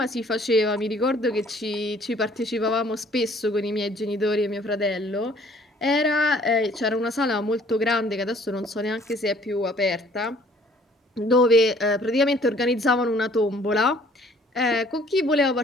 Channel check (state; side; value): normal; both; correlation 0.57